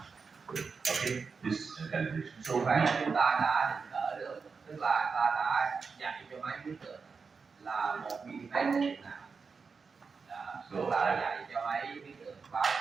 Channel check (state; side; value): quieter; left; 5.1 dB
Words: Okay, this calibration. So Như vậy chúng ta đã định cỡ được, tức là ta đã dạy cho máy biết được là 1 mm là điểm nào. Tức là dạy cho máy biết được, báo